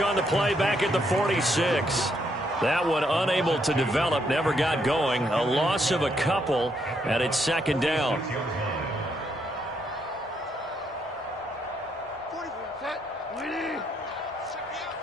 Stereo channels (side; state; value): both; normal; correlation 0.75